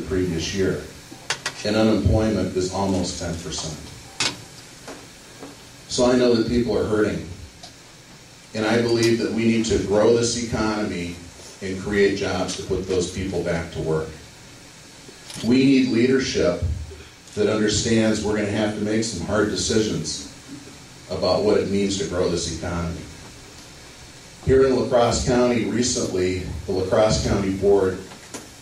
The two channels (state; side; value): identical; both; correlation 1.00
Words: the previous year. And unemployment is almost 10%. So I know that people are hurting. And I believe that we need to grow this economy and create jobs to put those people back to work. We need leadership that understands we're going to have to make some hard decisions about what it means to grow this economy. Here in La Crosse County recently, the La Crosse County Board